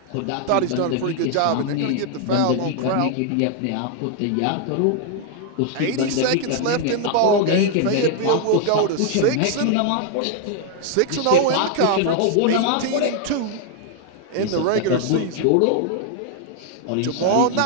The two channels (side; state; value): both; different; correlation 0.00